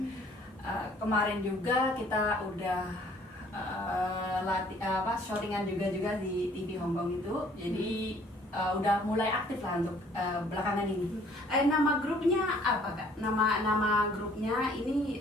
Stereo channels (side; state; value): both; normal; correlation 0.58